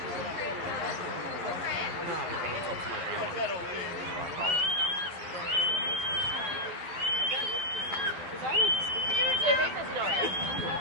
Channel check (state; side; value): late; left; 12 ms